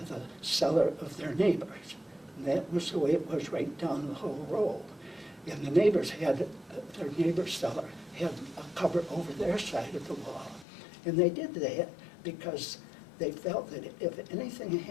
the cellar of their neighbors. And that was the way it was right down the whole row. And the neighbors had, their neighbor's cellar had a cover over their side of the wall. And they did that because they felt that if anything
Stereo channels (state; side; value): drops out; right; at 10.7 s